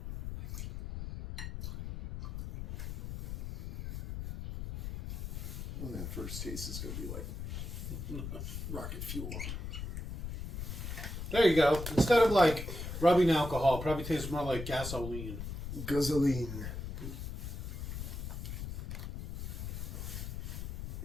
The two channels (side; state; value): left; noise; rumble, 6 dB below the sound